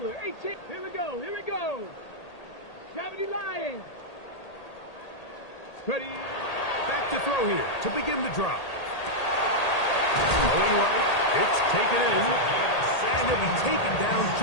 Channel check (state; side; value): late; right; 1.8 ms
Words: 18. Here we go. Here we go. 70 Lions. Ready. Back to throw here to begin the drop. Going right. It's taken in. And he'll be taken down